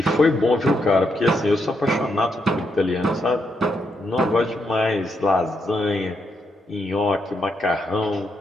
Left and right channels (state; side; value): normal; both; correlation 0.80